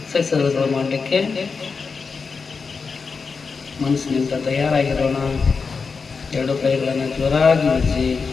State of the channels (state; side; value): quieter; right; 5.0 dB